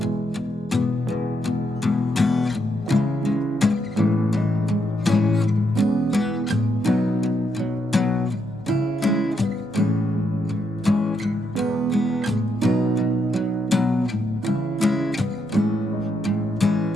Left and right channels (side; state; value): right; noise; hum, 23 dB below the sound